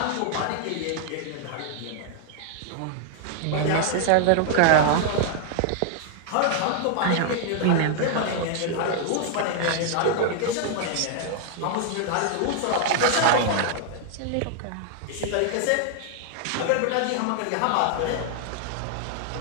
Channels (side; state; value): both; different; correlation 0.00